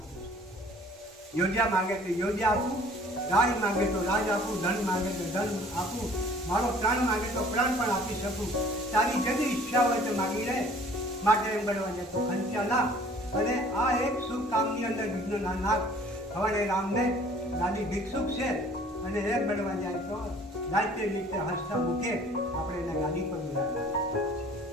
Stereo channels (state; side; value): normal; both; correlation 0.53